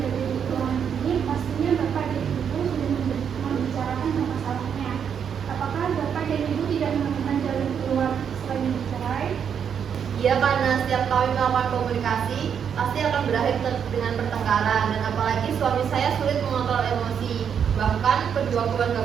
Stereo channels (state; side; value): quieter; left; 7.7 dB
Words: ruangan ini, pastinya Bapak dan Ibu sudah membicarakan masalahnya. Apakah Bapak dan Ibu tidak menemukan jalan keluar selain bercerai? Ya, karena setiap kami melakukan komunikasi, pasti akan berakhir dengan pertengkaran. Dan apalagi suami saya sulit mengontrol emosi. Bahkan kedua keluarga